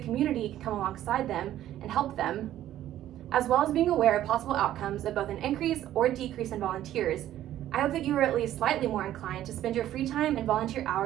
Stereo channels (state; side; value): quieter; left; 12.6 dB